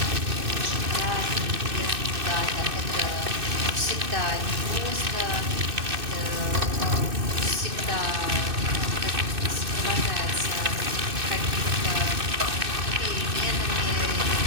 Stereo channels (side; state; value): left; late; 2.6 ms